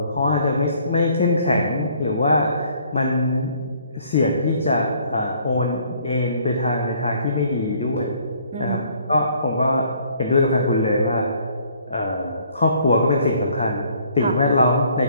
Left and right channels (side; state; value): both; inverted; correlation -0.60